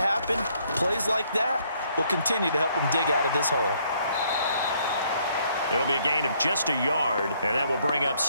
Plays like that will continue to help them dig out of this hole. It'll be a gain of just a yard, and that will bring up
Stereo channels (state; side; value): inverted; both; correlation -0.68